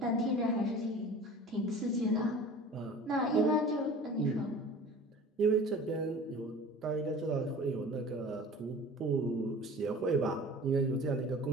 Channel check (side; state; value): both; normal; correlation 0.42